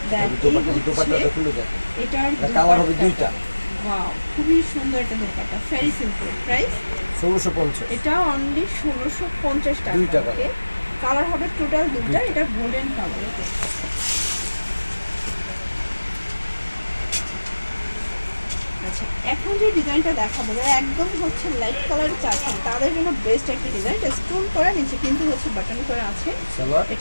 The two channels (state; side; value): inverted; both; correlation -1.00